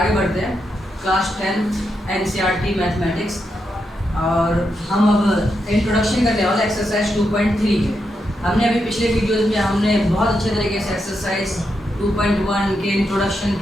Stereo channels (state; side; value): normal; both; correlation 0.84